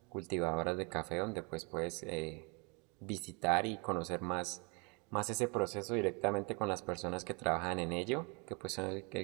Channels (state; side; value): quieter; left; 32.4 dB